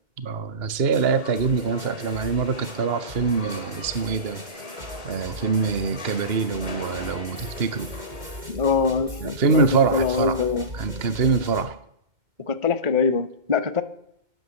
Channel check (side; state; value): left; late; 2.1 ms